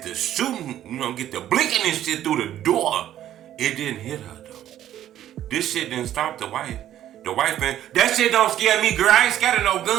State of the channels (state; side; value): quieter; left; 11.9 dB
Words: the shooting, get the blinking and shit through the door. It didn't hit her, though. This shit didn't stop the wife. The wife, man, that shit don't scare me, girl. I ain't scared of no